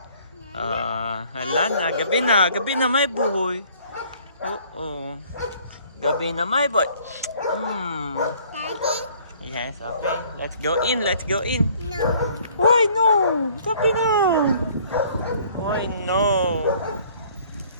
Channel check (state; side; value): inverted; both; correlation -0.57